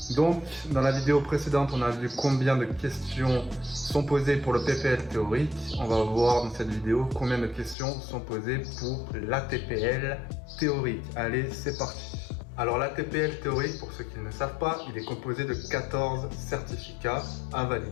Donc, dans la vidéo précédente, on a vu combien de questions sont posées pour le PPL théorique. On va voir dans cette vidéo combien de questions sont posées pour l'ATPL théorique. Allez, c'est parti. Alors, l'ATPL théorique, pour ceux qui ne le savent pas, il est composé de 14 certificats à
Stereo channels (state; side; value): drops out; right; at 7.8 s